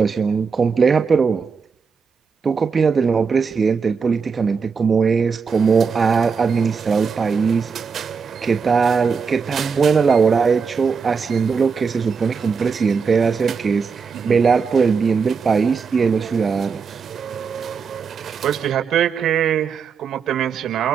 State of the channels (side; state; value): left; quieter; 5.6 dB